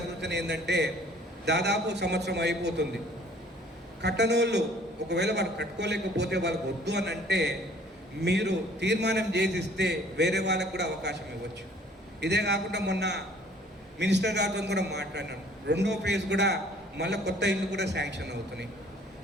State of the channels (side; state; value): both; normal; correlation 0.55